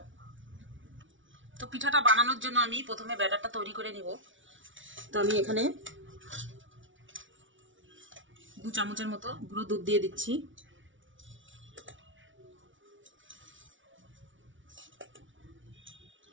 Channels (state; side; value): late; left; 0.56 ms